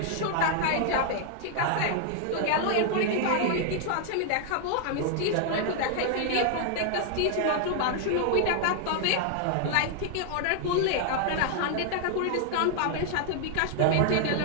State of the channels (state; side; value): different; both; correlation 0.00